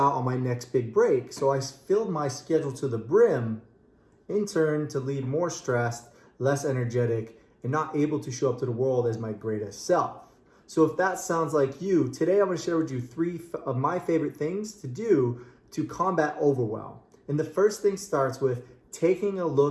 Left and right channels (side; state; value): both; identical; correlation 1.00